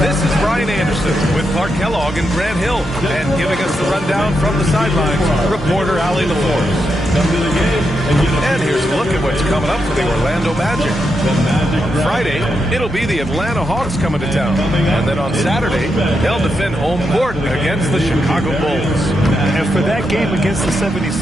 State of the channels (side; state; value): both; normal; correlation 0.84